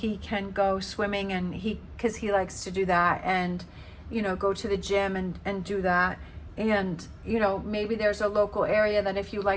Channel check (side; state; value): both; identical; correlation 1.00